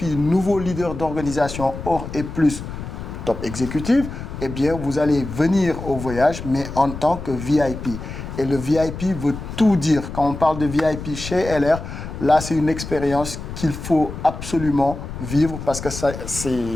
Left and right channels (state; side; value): noise; left; rumble, 9 dB below the sound